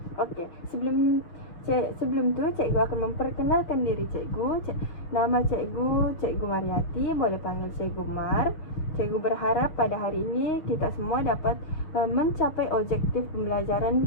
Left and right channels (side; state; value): right; late; 6.5 ms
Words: Okey, sebelum tu cikgu akan memperkenalkan diri cikgu. Nama cikgu Mariati, boleh panggil cikgu Mar. Cikgu berharap pada hari ini kita semua dapat mencapai objektif